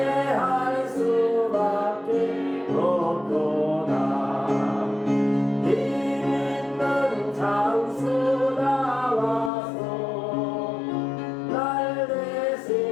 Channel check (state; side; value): drops out; right; at 9.5 s